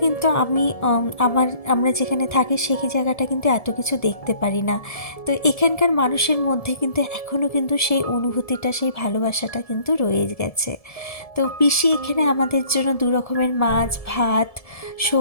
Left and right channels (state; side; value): late; right; 1.7 ms